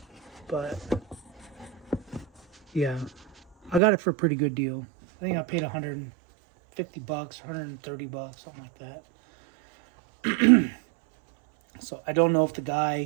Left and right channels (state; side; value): drops out; left; at 3.8 s